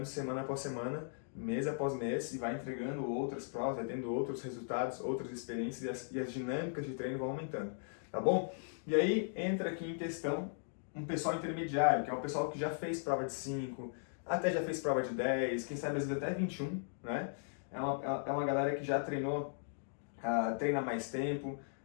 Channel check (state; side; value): silent; right; digital silence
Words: semana após semana, mês após mês, e vai entregando outras provas, vai tendo outros resultados, outras experiências, e as dinâmicas de treino vão aumentando, tá bom? E aí entra aqui em questão um pessoal intermediário, que é o pessoal que já fez prova de 5, até já fez prova de 10, quem sabe às vezes até 21, né? É uma galera que já treinou, treina mais tempo